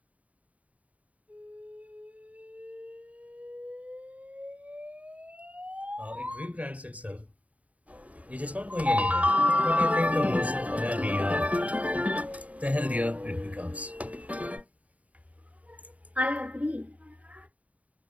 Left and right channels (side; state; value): left; late; 0.069 ms